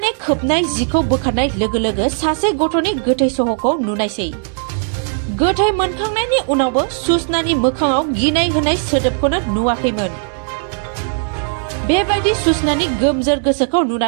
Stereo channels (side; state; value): left; silent; 66 dB below the other